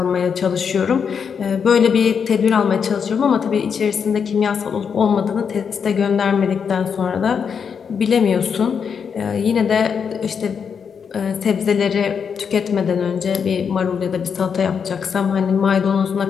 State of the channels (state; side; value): quieter; right; 6.7 dB